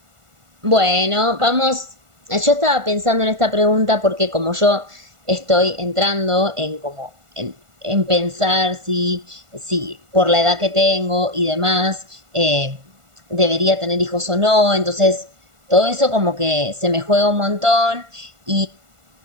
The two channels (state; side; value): late; left; 1.4 ms